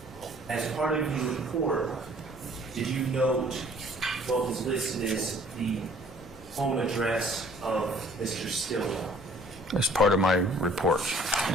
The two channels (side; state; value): both; normal; correlation 0.55